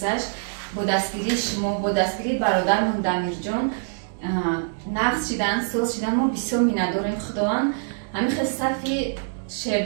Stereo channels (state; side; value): silent; left; digital silence